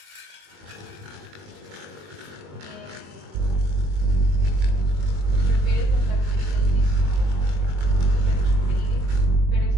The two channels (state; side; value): late; left; 21 ms